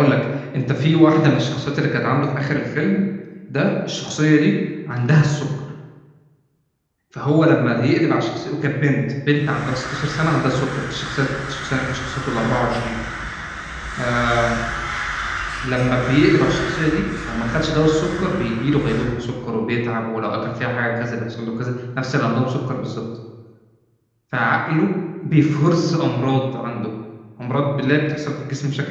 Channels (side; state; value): both; identical; correlation 1.00